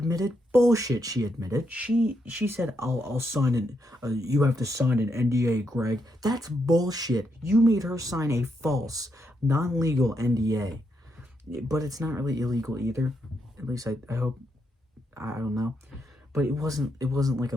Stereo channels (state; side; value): normal; both; correlation 0.80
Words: bullshit. She admitted. She said, I'll sign an you have to sign an NDA, Greg. That's bullshit. You made her sign a false, non-legal NDA. But it's not really illegal either. At least I hope. I don't know, but it wasn't like a